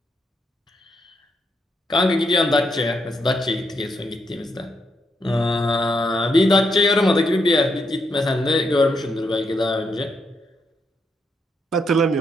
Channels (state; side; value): normal; both; correlation 0.79